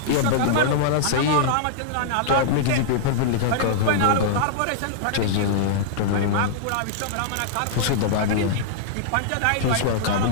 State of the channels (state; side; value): different; both; correlation -0.02